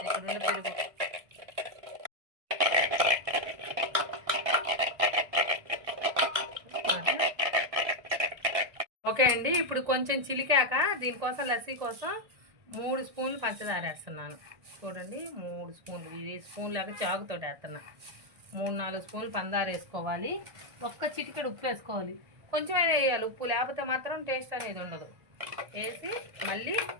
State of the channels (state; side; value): late; left; 1.6 ms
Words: ఇక్కడ ఉన్న పెరుగు ఓకే అండి. ఇప్పుడు కొంచెం చిలికాక దీనికోసం లస్సీ కోసం 3 స్పూన్లు పంచదార వేస్తున్నాను. చూడండి 3 స్పూన్లు, ఇది స్పూన్ లాగా చాకుతో వేస్తున్నా. 3-4 స్పూన్లు పంచదార వేసుకోవాలి. ఒక్క చిటికెడు ఉప్పు వేసుకోవాలి. కొంచెమైనా వేయాలి ఉప్పు, లేకపోతే మాత్రం టేస్ట్ అనేది ఉండదు. వేసి మళ్ళీ